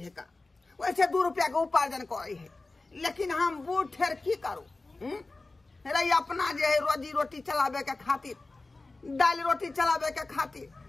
है का वैसे 2 रुपया के उपार्जन करे है लेकिन हम बूढ़ ठेर की करू रे अपना जे है रोजी रोटी चलावे के खातिर दाल रोटी चलावे के खातिर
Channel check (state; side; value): quieter; right; 3.3 dB